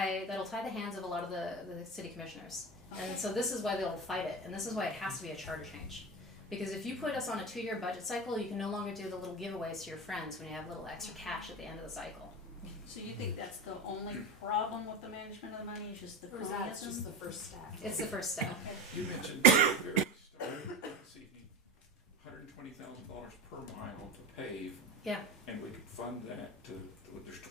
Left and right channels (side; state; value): both; normal; correlation 0.23